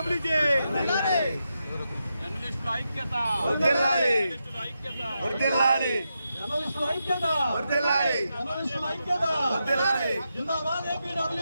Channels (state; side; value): inverted; both; correlation -0.86